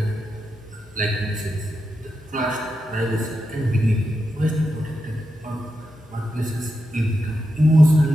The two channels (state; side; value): normal; both; correlation 0.87